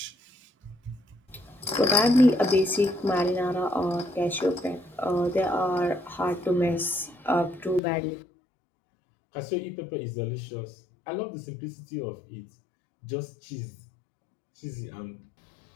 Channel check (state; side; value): drops out; right; at 7.8 s